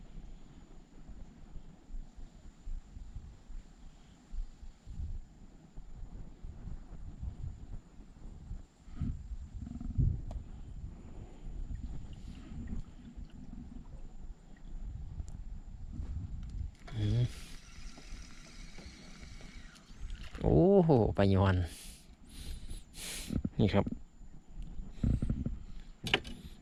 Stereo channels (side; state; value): both; identical; correlation 1.00